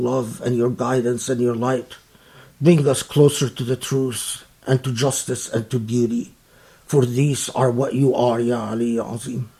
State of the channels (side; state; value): both; identical; correlation 1.00